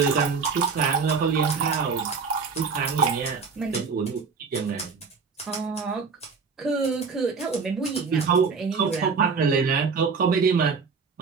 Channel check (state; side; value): quieter; left; 5.2 dB